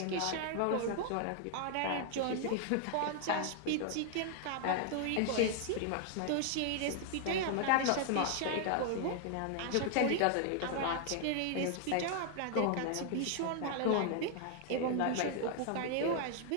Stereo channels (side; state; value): both; different; correlation 0.00